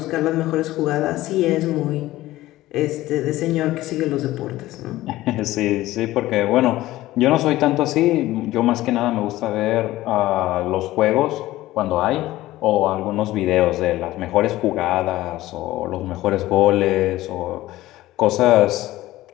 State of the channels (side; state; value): right; quieter; 16.4 dB